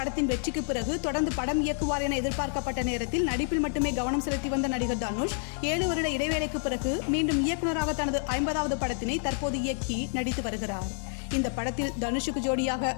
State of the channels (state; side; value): silent; right; 58 dB below the other